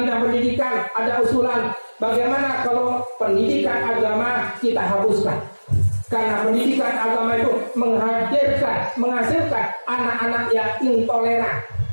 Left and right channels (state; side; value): inverted; both; correlation -1.00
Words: bidang pendidikan ada usulan bagaimana kalau pendidikan agama kita hapuskan. Karena pendidikan agama itu menghasilkan anak-anak yang intoleran.